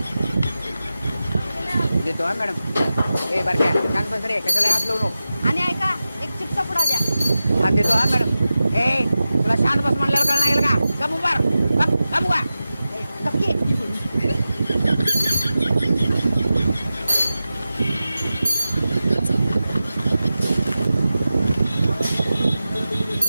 देतो हा मॅडम. ए बरं काय शांत बस रे, कशाला हात लावू नको. आणि ऐका एक चिप्सचा पुडा द्या. हा देतो हा मॅडम. ए तुला शांत बस म्हणल्यावर कळणार येईल का? गप उभार, गप उभा. नक्की.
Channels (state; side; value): inverted; both; correlation -0.93